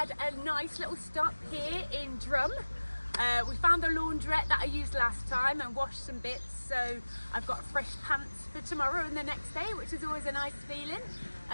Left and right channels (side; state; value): both; inverted; correlation -1.00